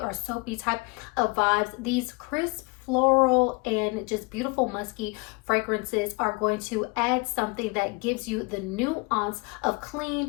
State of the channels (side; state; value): right; quieter; 27.9 dB